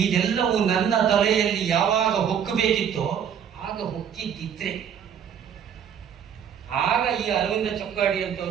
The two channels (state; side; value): quieter; left; 8.3 dB